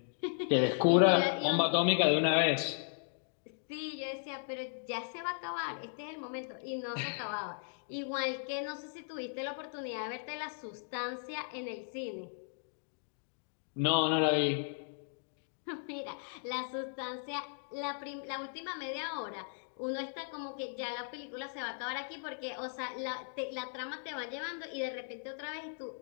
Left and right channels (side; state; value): right; silent; digital silence